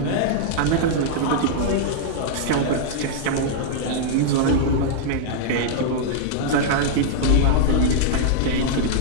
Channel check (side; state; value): both; different; correlation -0.01